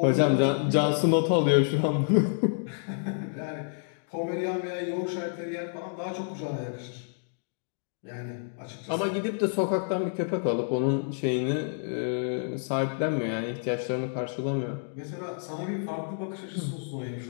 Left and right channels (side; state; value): right; silent; digital silence